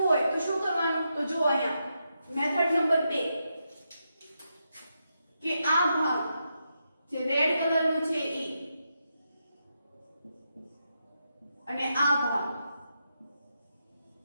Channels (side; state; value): both; inverted; correlation -0.84